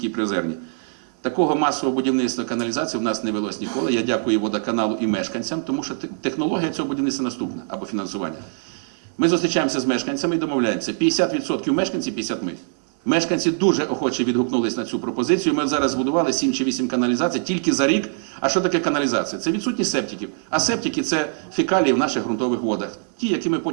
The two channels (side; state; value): left; silent; digital silence